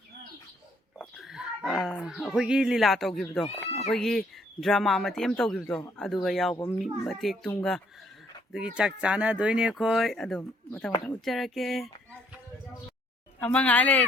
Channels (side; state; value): both; normal; correlation 0.67